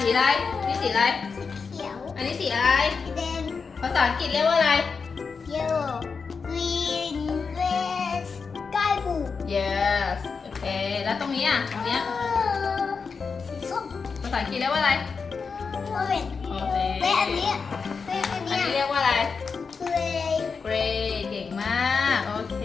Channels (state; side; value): quieter; right; 5.2 dB